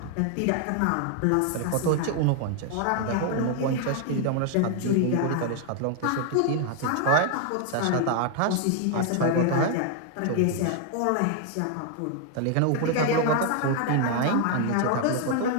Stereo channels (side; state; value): both; different; correlation 0.00